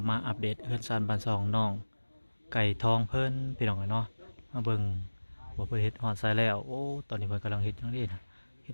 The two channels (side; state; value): both; inverted; correlation -1.00